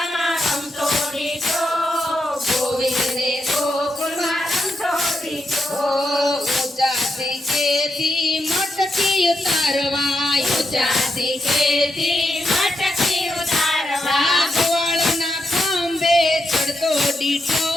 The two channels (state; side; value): normal; both; correlation 0.83